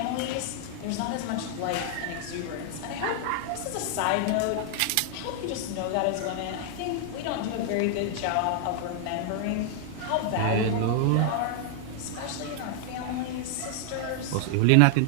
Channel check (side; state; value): both; different; correlation 0.00